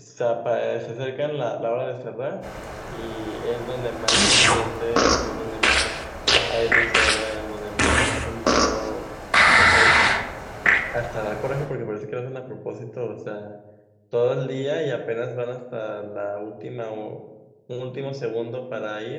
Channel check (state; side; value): identical; both; correlation 1.00